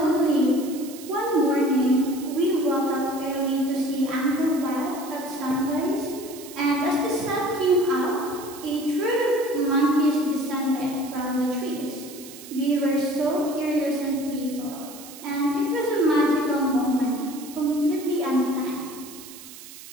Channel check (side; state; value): right; noise; hiss, 16 dB below the sound